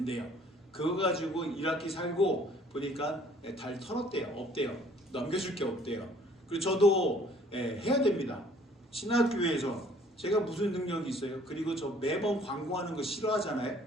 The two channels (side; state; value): both; normal; correlation 0.57